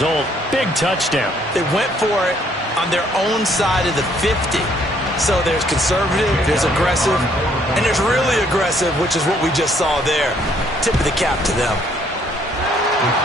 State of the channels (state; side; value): normal; both; correlation 0.66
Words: Big touchdown. They went for it on their own side of the 50. So there's conservative, there's aggressive, and there's really aggressive, which is what we just saw there. Tip of the cap to them.